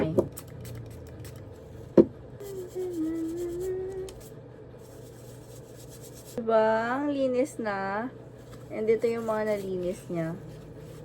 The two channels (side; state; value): both; identical; correlation 1.00